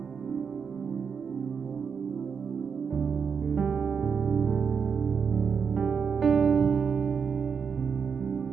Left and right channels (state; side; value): quieter; left; 6.3 dB